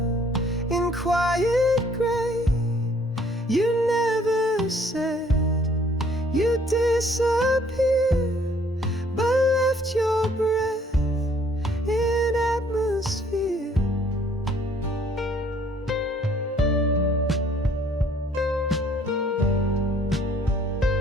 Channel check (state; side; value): normal; both; correlation 0.61